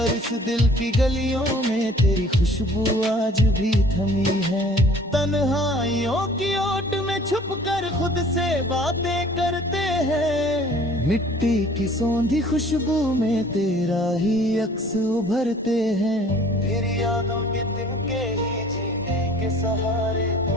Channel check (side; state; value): both; normal; correlation 0.51